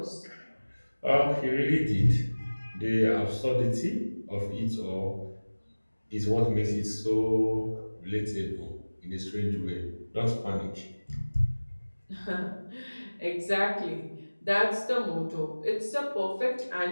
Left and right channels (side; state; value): both; inverted; correlation -1.00